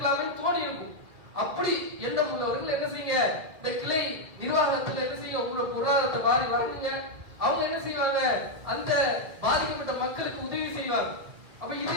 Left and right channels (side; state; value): left; late; 2.2 ms